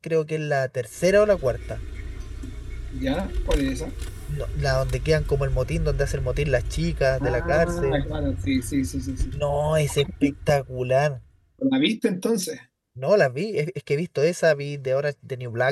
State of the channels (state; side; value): identical; both; correlation 1.00